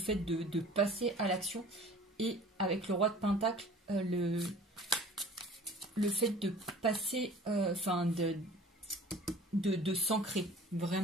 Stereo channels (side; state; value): both; normal; correlation 0.46